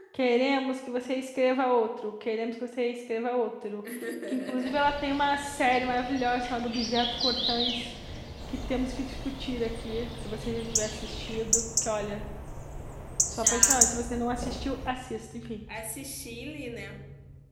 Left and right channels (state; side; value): identical; both; correlation 1.00